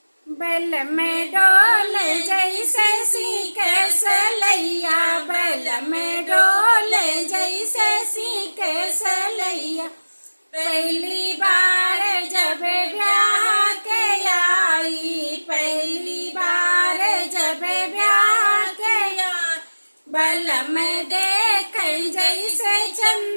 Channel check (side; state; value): both; inverted; correlation -1.00